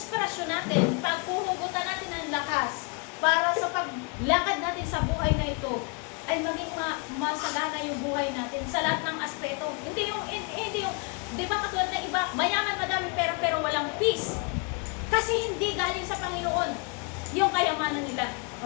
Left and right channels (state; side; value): quieter; right; 33.9 dB